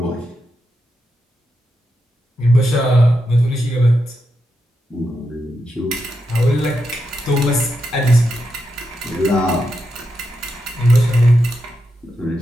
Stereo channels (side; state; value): both; normal; correlation 0.86